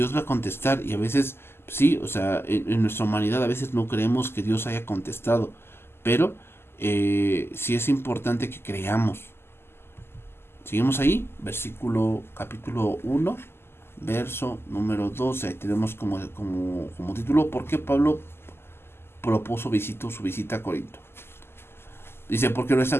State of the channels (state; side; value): late; right; 0.12 ms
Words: va a contestar y a veces sí, o sea, en nuestra humanidad a veces no creemos que Dios haya contestado, pero sí es importante que creamos. Seguimos ahí, capítulo 1, verso número 12. Ahí tenemos como título: ¿por qué Pablo su visita a Corinto? Dice: porque nuestra